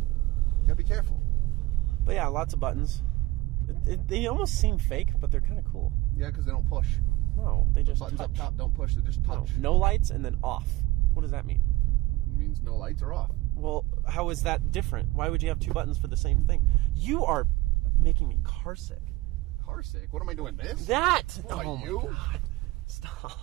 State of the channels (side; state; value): left; quieter; 19.6 dB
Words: You gotta be careful. But yeah, lots of buttons. They almost seem fake, but they're kind of cool. Yeah, because they don't push. No, they just Buttons touch. up top don't push. They just touch. No lights and then off. What does that mean? It means no lights are off. Well, how is that different? Why would you have 2 buttons for the same thing? You are making me car sick. Car sick? What am I doing? This? That! What, Oh my you? God.